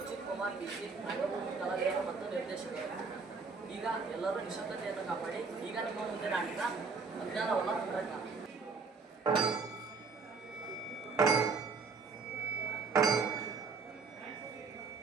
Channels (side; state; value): left; quieter; 4.6 dB